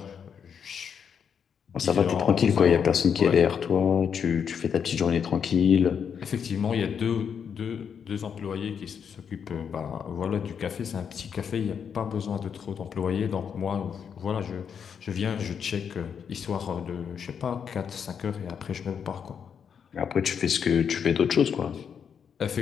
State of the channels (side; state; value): right; quieter; 7.3 dB